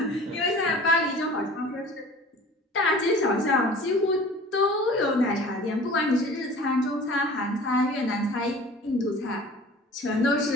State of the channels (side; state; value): both; normal; correlation 0.44